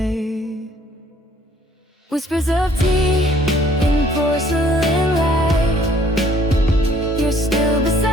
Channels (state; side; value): normal; both; correlation 0.60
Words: Whispers of tea in porcelain